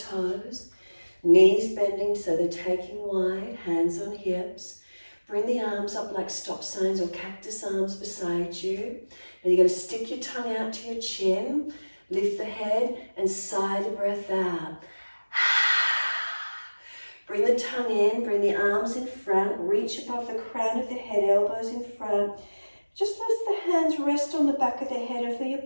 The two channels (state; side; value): inverted; both; correlation -1.00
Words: Knees bending so they're taking wide, hands on hips. Bring the arms up like stop signs or cactus arms beside you. And you're going to stick your tongue out to your chin. Lift the head and sigh the breath out. Bring the tongue in, bring the arms in front, reach above the crown of the head, elbows in front. Just let the hands rest on the back of the head if